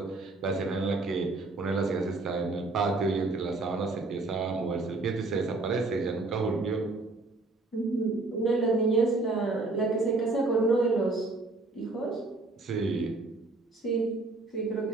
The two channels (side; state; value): left; quieter; 3.3 dB